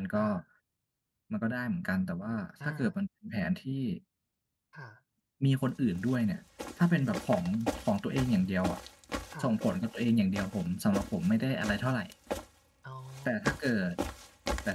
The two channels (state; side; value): identical; both; correlation 1.00